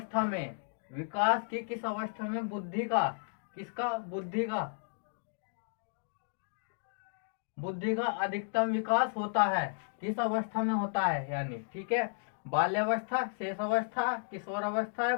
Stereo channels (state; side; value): silent; right; digital silence